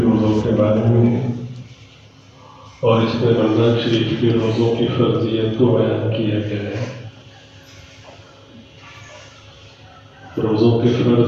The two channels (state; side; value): identical; both; correlation 1.00